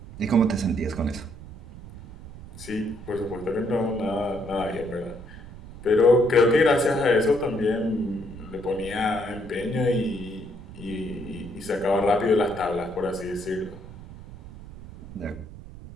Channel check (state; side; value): noise; right; rumble, 15 dB below the sound